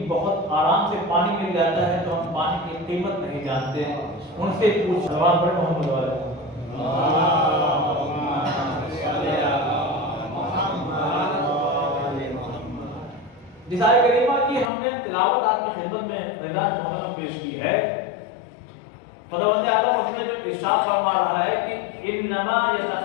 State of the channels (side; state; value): right; drops out; at 14.7 s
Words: بہت آرام سے پانی مل جاتا ہے تو ہم پانی کی قیمت نہیں جانتے ہیں۔ ان سے پوچھ سوال پڑے محمد والے جس آیت کریمہ کی ہم نے تلاوت آپ کی خدمت میں اعلان محترم پیش کی ہے، خداوند عالم اس میں جو ارشاد فرما رہا ہے کہ انما